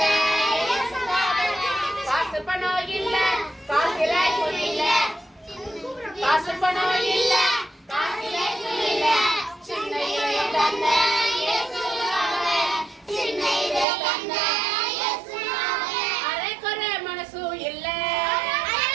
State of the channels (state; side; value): drops out; left; at 13.9 s